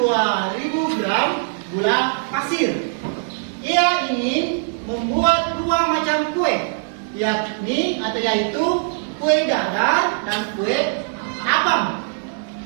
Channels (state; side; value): silent; left; digital silence